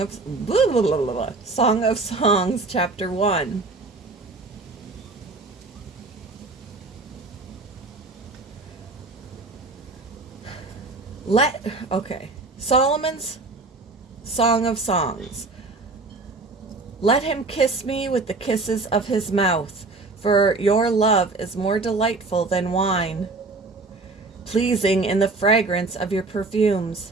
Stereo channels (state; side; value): quieter; left; 3.5 dB